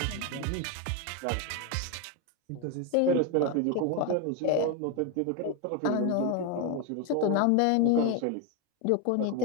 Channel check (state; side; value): different; both; correlation 0.02